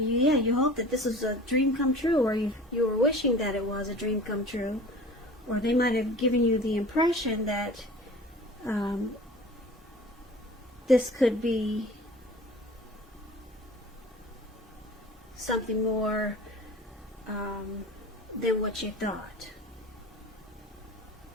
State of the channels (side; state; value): both; normal; correlation 0.42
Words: hope that this is a dream come true, or you were wishing that it was a dream come true, or they might have given you the impression that this could be something more than what you thought.